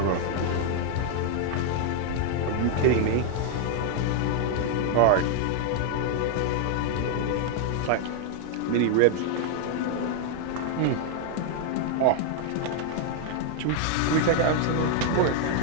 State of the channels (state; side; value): different; both; correlation 0.00